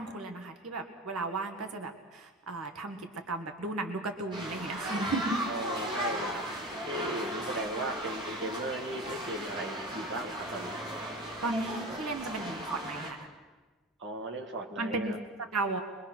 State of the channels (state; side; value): normal; both; correlation 0.31